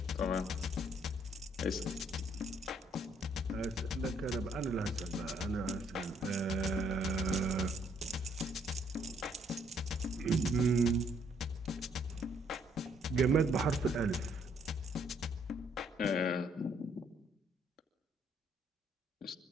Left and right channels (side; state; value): both; normal; correlation 0.68